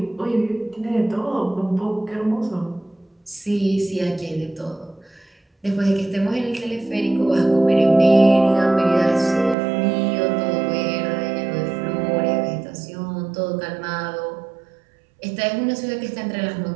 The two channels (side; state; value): left; drops out; at 9.6 s